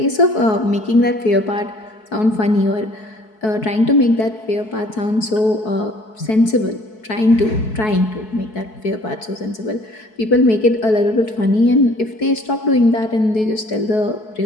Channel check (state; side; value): late; right; 4.6 ms